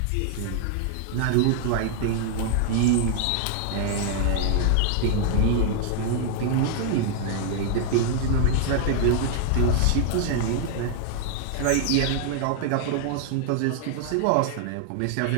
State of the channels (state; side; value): different; both; correlation 0.00